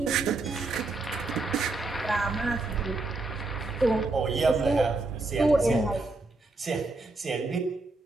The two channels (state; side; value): quieter; left; 3.3 dB